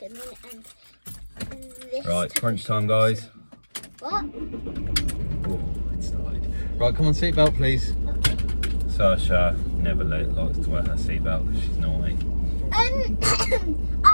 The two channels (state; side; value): inverted; both; correlation -1.00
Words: in, and this. Right, to crunch push time, them. guys. What? Oh, it started. Right, come on, seatbelt, please. Okay. Saoirse never likes to wear her seatbelt because she's naughty. I